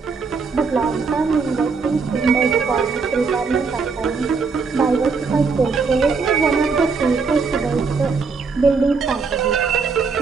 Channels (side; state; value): left; quieter; 4.9 dB